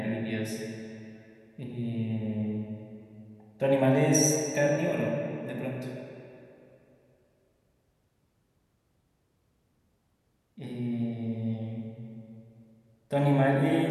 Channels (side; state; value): both; identical; correlation 1.00